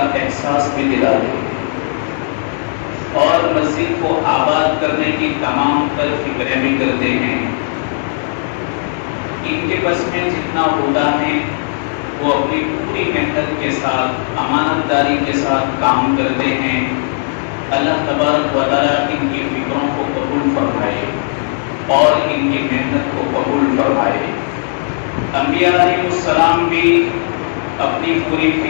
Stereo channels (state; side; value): silent; right; digital silence